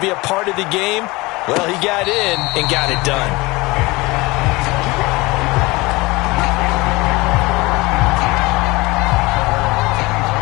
be a part of the game. Well, he got in and got it done.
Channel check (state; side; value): quieter; right; 22.8 dB